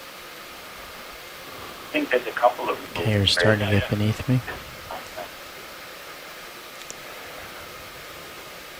I think there's a couple of... Okay, you're starting to get beneath me.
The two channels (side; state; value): both; identical; correlation 1.00